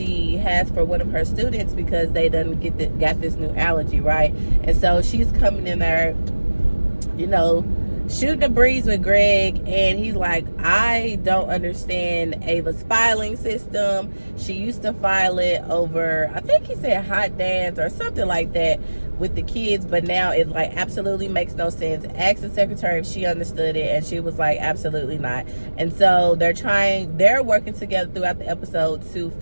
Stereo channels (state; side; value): inverted; both; correlation -1.00